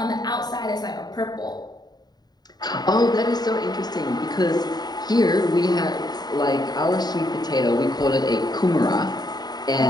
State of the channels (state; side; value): late; right; 0.20 ms